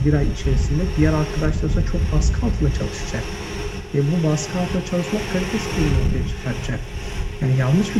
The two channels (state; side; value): identical; both; correlation 1.00